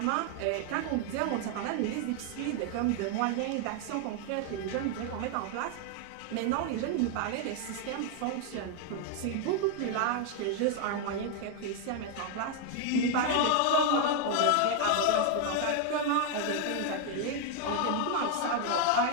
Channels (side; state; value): both; different; correlation 0.01